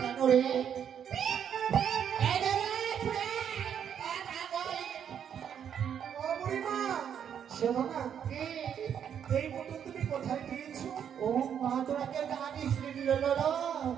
রে ও বুড়িমা, শোনো না, এই বোতল তুমি কোথায় পেয়েছো? ও মা তোরাকে জানিস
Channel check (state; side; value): quieter; left; 8.6 dB